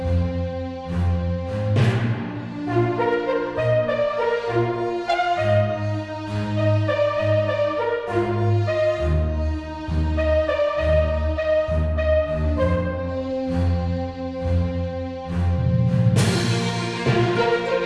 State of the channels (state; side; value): identical; both; correlation 1.00